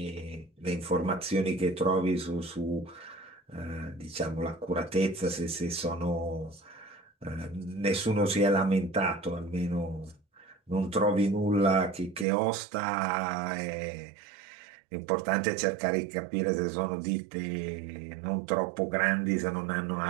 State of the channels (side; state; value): left; drops out; at 12.2 s